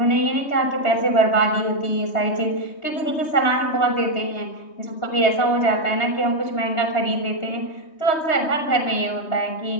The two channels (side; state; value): right; late; 3.2 ms